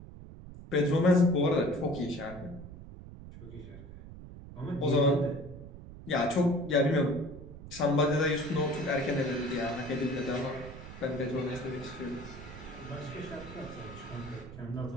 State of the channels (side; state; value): right; noise; rumble, 14 dB below the sound